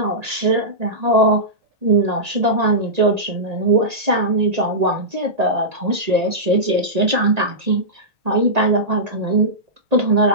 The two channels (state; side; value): late; left; 1.9 ms